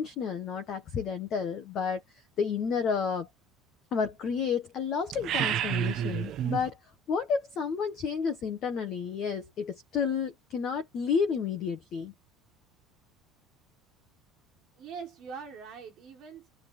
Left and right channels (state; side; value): quieter; right; 3.2 dB